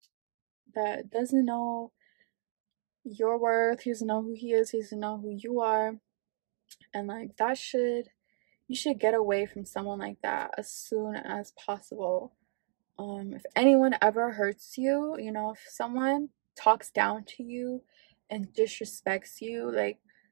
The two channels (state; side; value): silent; left; 56 dB below the other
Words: your worth. He doesn't know who he is. He doesn't know who you are. And like, you should get away from someone like that as soon as possible. If anyone ever hurts you, if someone talks down to you and disrespects you, like,